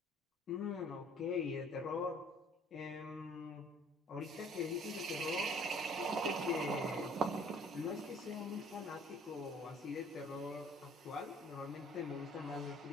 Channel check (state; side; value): normal; both; correlation 0.55